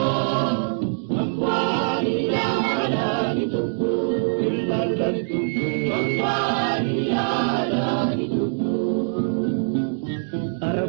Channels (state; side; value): silent; left; digital silence